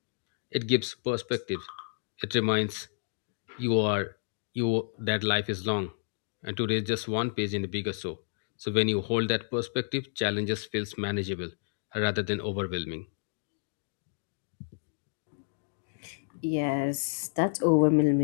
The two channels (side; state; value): right; silent; digital silence